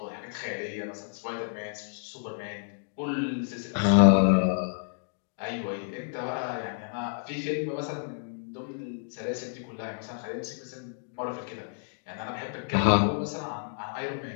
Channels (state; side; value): silent; right; digital silence